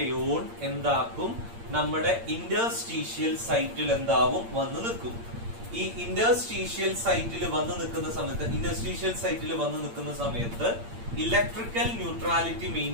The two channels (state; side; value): late; left; 8.7 ms